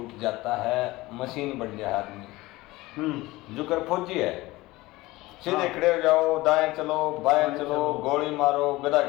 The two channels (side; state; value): right; quieter; 19.6 dB